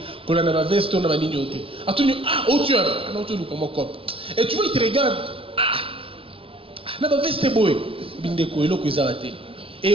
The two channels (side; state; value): left; late; 0.26 ms